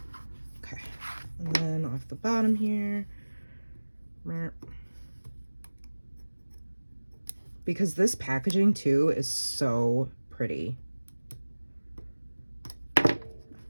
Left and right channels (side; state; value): both; inverted; correlation -1.00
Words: Okay, and then off the bottom here. Because this packaging too is so pretty.